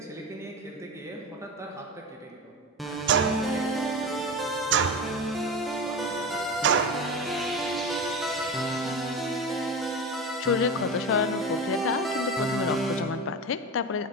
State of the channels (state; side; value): normal; both; correlation 0.23